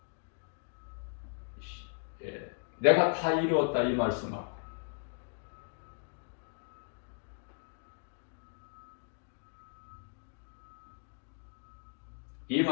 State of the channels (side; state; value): right; silent; 53 dB below the other